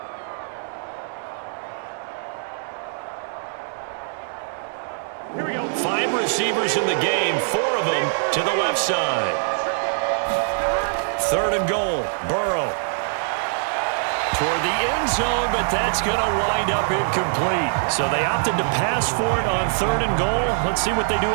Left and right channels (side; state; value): left; silent; digital silence